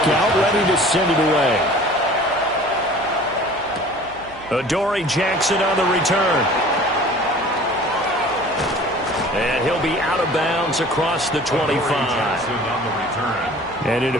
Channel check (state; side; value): noise; right; hum, 22 dB below the sound